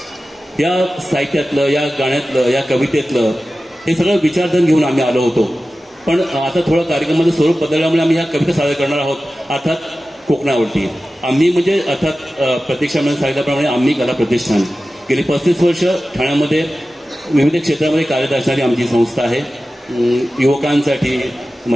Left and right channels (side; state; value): both; normal; correlation 0.95